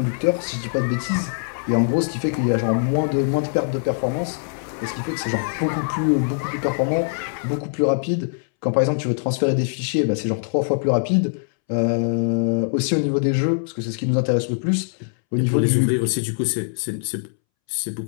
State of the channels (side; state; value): right; silent; 64 dB below the other